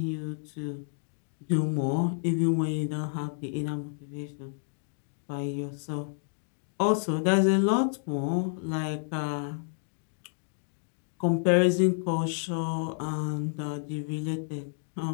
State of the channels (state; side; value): silent; right; digital silence